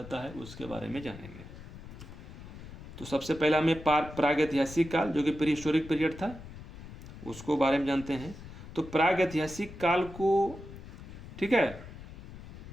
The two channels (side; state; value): left; noise; rumble, 14 dB below the sound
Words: है उसके बारे में जानेंगे। तो सबसे पहले हमें प्रागैतिहासिक काल जो कि प्री हिस्टोरिक पीरियड था उसको बारे में जानते हैं। तो प्रागैतिहासिक काल को, ठीक है,